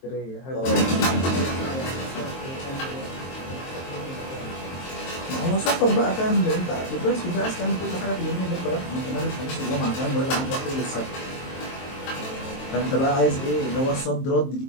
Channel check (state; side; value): late; right; 23 ms